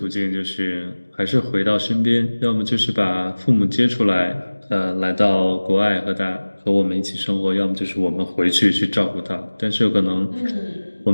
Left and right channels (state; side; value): inverted; both; correlation -1.00